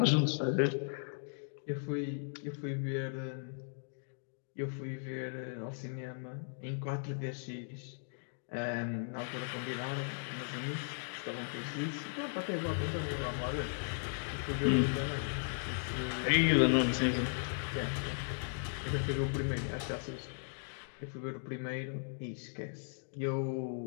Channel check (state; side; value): silent; right; digital silence